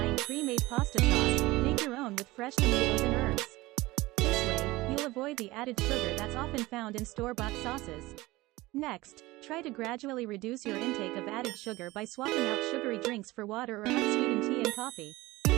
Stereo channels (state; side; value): quieter; left; 19.8 dB